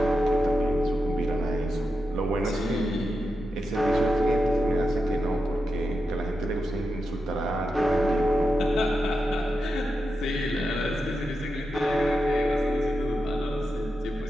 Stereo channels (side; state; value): both; normal; correlation 0.88